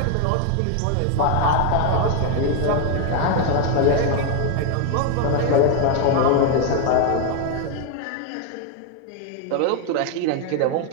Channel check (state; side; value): different; both; correlation 0.01